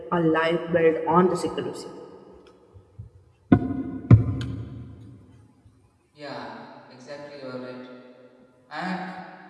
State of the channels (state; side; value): identical; both; correlation 1.00